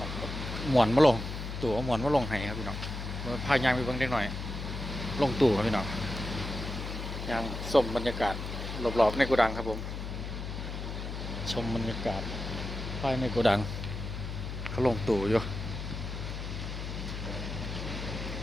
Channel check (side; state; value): left; noise; hum, 6 dB below the sound